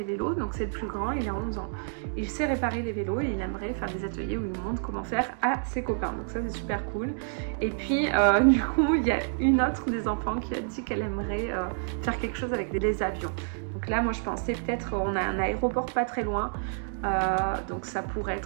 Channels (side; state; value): left; silent; digital silence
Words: vélos, donc c'est le plus grand, il a 11 ans. Il sait réparer les vélos et il aimerait faire des ateliers où il montre comment faire à ses copains. Donc ça, c'est super cool. Et puis, du coup, il y a une autre des enfants qui a dit qu'elle aimerait faire quelque chose avec les avions. Donc là, moi, je pensais peut-être, on a un aéroport pas très loin, donc ça pourrait